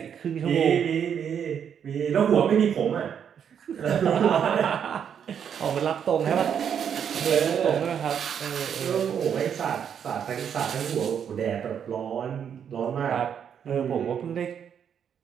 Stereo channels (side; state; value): left; quieter; 8.1 dB